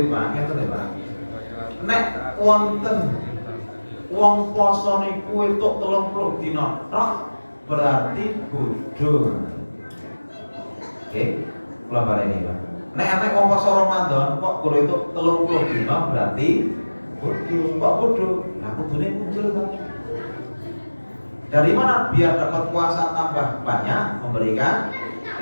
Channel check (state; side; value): inverted; both; correlation -1.00